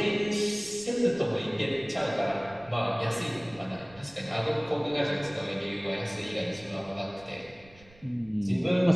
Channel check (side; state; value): right; noise; rumble, 25 dB below the sound